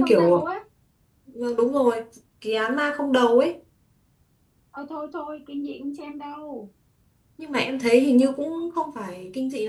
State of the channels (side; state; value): both; identical; correlation 1.00